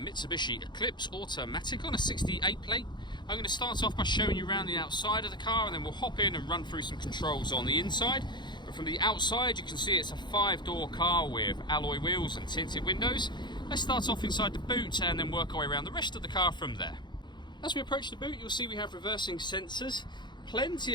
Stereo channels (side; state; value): right; late; 0.22 ms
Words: Eclipse automatic on a 68 plate. I'm going to start off by showing you around the outside of the car, and then we'll hop in and run through some controls on the inside. But from the outside you can see it's a 5-door car with alloy wheels and tinted windows. Let's start off inside the boot and then work our way around the rest of the car from there. As we approach the boot, you'll see we have reversing sensors, plenty